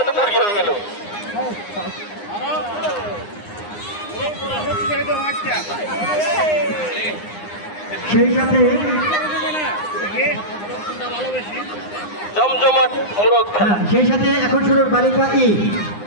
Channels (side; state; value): right; late; 9.7 ms